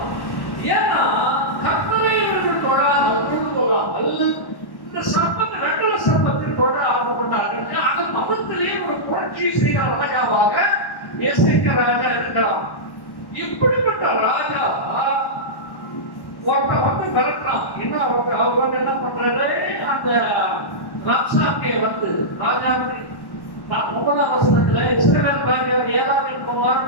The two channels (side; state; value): right; late; 1.1 ms